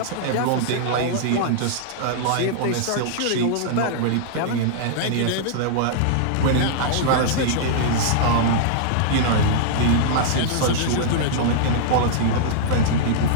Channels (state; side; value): different; both; correlation -0.02